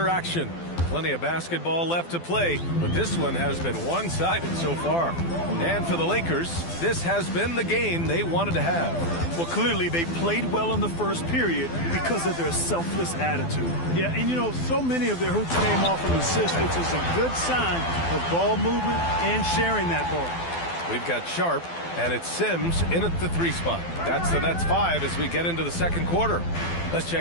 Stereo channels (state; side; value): late; right; 12 ms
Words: action. Plenty of basketball left to play, but this one has been one-sided so far. And for the Lakers, this has been the game they wanted to have. Well, clearly they played well in the first period because of their selfless attitude. Yeah, and you know, so many of their hoops came off of assists, which is a good sign of ball movement and sharing that ball. We've got Sharp, and it's Sims in at the 3 spot. That's the Nets 5 as we get into the second quarter. Let's